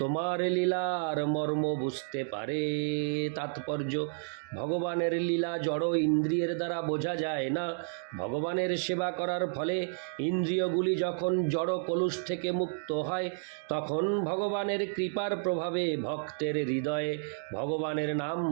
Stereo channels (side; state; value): left; silent; digital silence